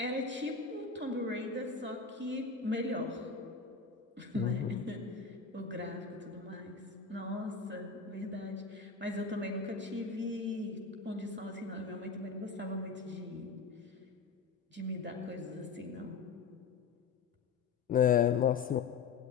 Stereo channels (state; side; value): quieter; right; 5.2 dB